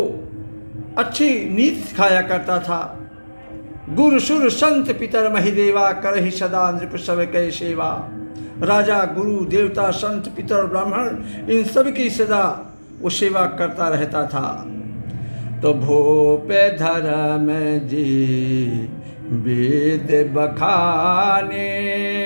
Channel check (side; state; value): both; inverted; correlation -1.00